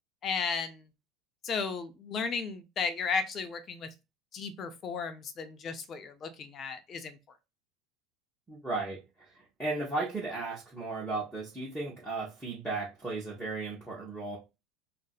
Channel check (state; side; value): normal; both; correlation 0.51